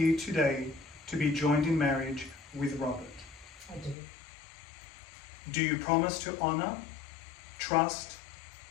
today to be joined in marriage with Robert? I do. Do you promise to honour, trust,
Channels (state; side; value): drops out; right; at 4.0 s